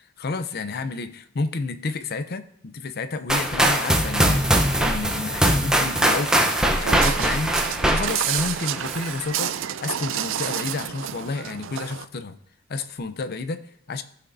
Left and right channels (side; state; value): both; normal; correlation 0.49